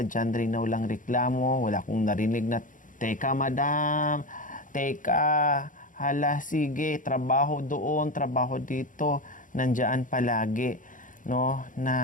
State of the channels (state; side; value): late; right; 0.38 ms